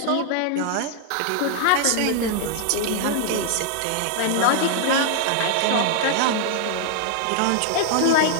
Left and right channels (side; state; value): both; different; correlation 0.00